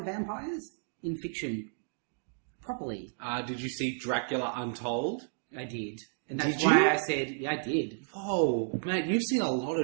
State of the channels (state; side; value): silent; left; digital silence